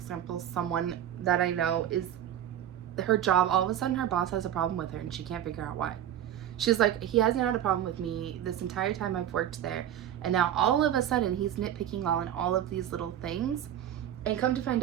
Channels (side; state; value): left; quieter; 10.9 dB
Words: Someone that I know is, her job, all of a sudden her boss has a problem with her and she can't figure out why. She's like, he hasn't had a problem with me this entire time I've worked there, and now all of a sudden he's nitpicking on all of these little things. And come to